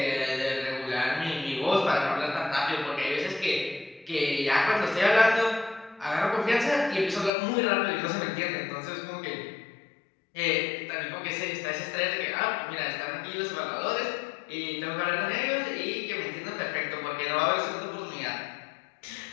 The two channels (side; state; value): right; drops out; at 7.3 s